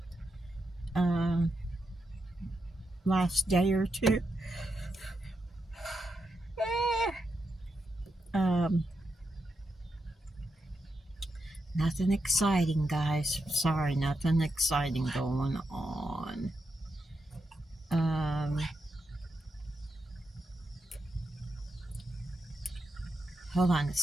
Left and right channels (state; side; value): normal; both; correlation 0.85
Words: last day or two. Nothing exciting, guys. Sorry, nothing exciting going on. Hold on a